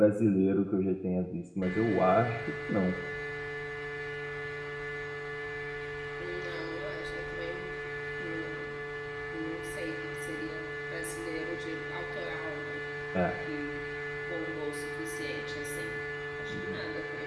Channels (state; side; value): identical; both; correlation 1.00